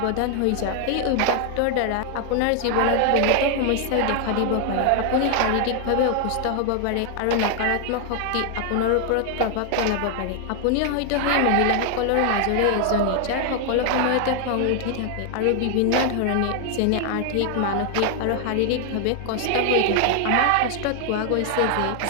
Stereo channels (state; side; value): different; both; correlation 0.00